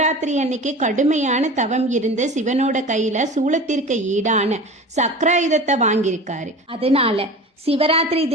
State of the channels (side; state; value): both; normal; correlation 0.35